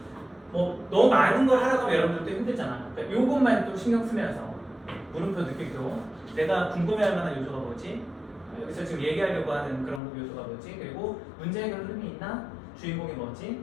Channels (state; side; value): drops out; right; at 10.0 s